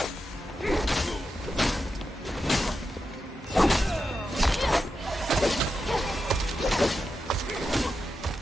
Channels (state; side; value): normal; both; correlation 0.88